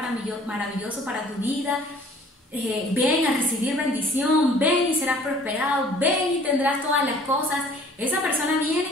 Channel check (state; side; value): normal; both; correlation 0.53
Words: para tu vida, ven a recibir bendición, ven y serás prosperado, ven y tendrás todas las cosas. Esa persona